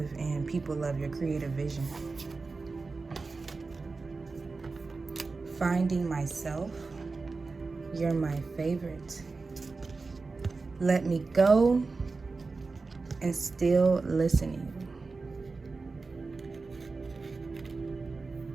and people love your creative vision. Finding myself. You're my favorite. Let me go, and still listening.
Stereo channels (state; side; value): quieter; left; 4.0 dB